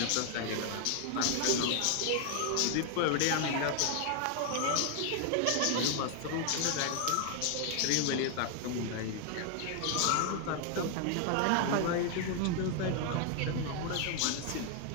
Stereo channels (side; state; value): both; different; correlation 0.00